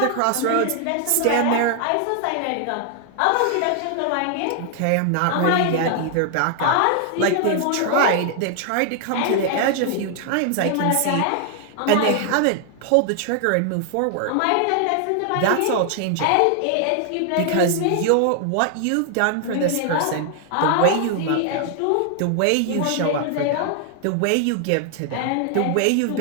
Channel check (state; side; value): different; both; correlation 0.00